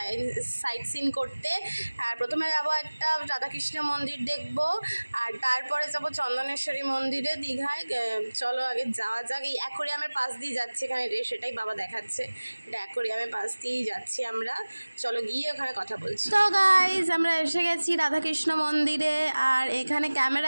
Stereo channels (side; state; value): both; inverted; correlation -1.00